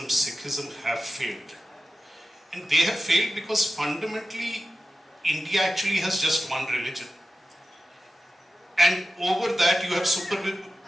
Sikhism, have failed. And they have failed because fundamentally India actually has just one religion. And over that you have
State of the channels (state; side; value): normal; both; correlation 0.93